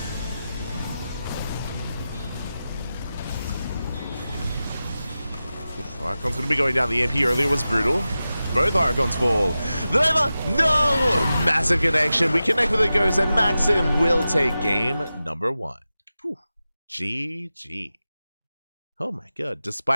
Archon's going to be going down. The EMP earlier was brutal. Both Archons fall. The Nova, no! Massive connection. We connect with the Ghost, and Maxim will take game number 1. Whew. GG. Oh my god.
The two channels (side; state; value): both; inverted; correlation -0.93